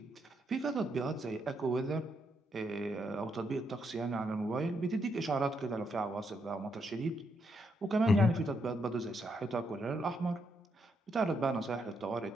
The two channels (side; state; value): both; normal; correlation 0.78